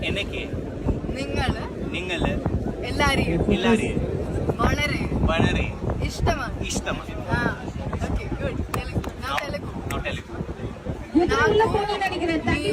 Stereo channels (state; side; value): identical; both; correlation 1.00